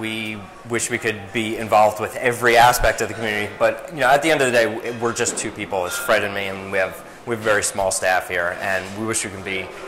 wish we could be involved with every aspect of the community, but you know, at the end of the day, we're just 2 people. It's Fred and me, and we have a very small staff here, and we wish we can be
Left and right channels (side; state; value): both; identical; correlation 1.00